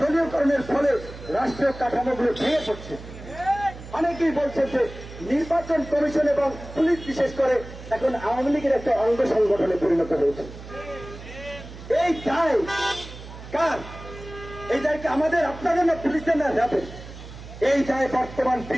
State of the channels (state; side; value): noise; right; hum, 14 dB below the sound